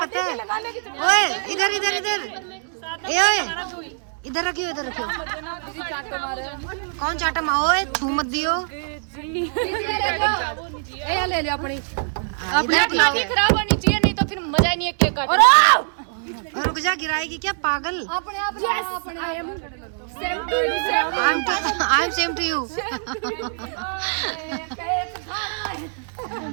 पता है? ओए इधर इधर रखियो। कौन चाटा ओए छू मत दियो। ले ले अपनी। इधर ठीक है। खराब होनी चाहिए, नहीं तो फिर मजा ही नहीं है केक काटने। और रुक जा, गिराएगी क्या पागल? I am same to you. I am same to you.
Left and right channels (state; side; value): silent; left; digital silence